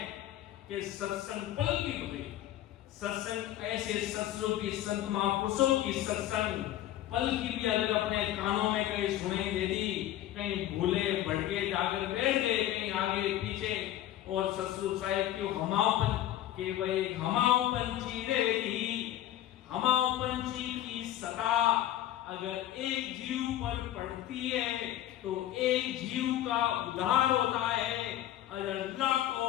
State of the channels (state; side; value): quieter; right; 13.0 dB